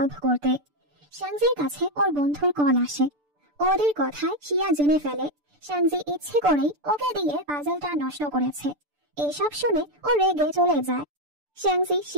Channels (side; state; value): left; late; 6.8 ms